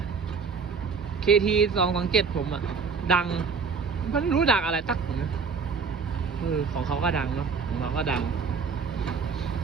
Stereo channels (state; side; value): quieter; left; 5.4 dB